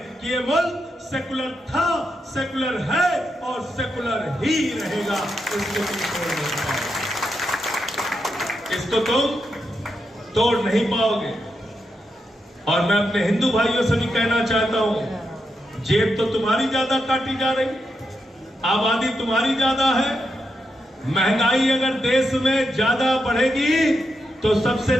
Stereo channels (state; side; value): normal; both; correlation 0.85